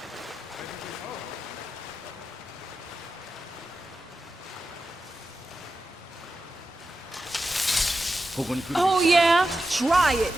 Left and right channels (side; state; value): both; normal; correlation 0.90